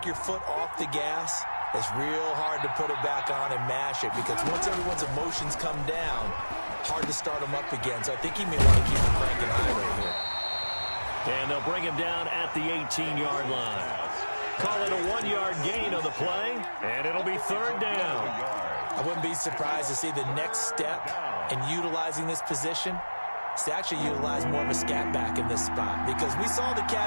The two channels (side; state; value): both; inverted; correlation -1.00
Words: your foot off the gas, it's real hard to put it back on and mash it, because once everyone's emotions come down, hard to start them up again. So I think he may want to keep him cranking high right here. And they'll bring him down at the 18-yard line. Call it a 1-yard gain of the play, and it'll be 3rd down. I wouldn't be surprised to see the next step in utilizing this position is to actually utilize more of a scat back in this spot, because we saw the